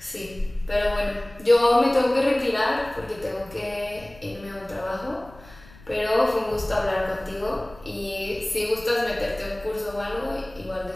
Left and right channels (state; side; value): noise; left; rumble, 22 dB below the sound